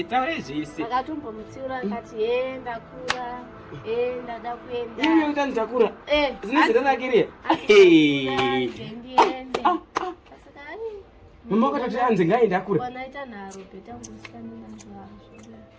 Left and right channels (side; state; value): both; identical; correlation 1.00